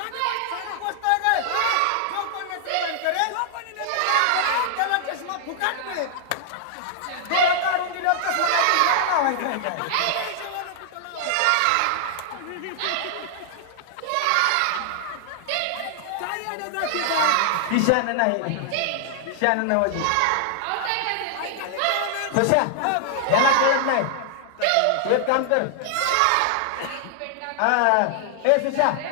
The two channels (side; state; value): both; different; correlation -0.01